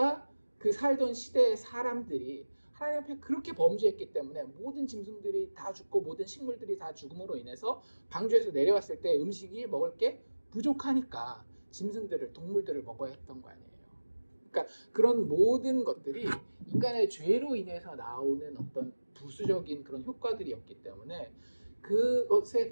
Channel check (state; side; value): inverted; both; correlation -1.00